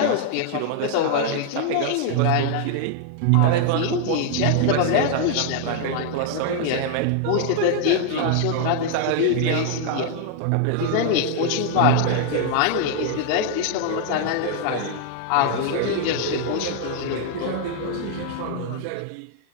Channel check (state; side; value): different; both; correlation 0.00